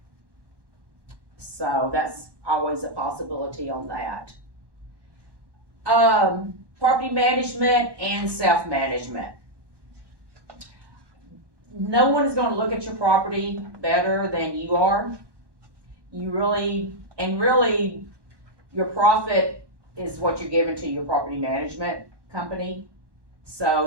So that's always a possibility on that. Property management and self-management. No one is going to look at your property better than you are. Really, your profit is what you're giving to your property management company.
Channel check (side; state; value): left; late; 1.1 ms